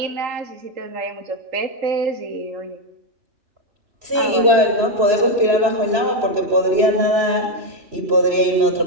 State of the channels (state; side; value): late; left; 3.0 ms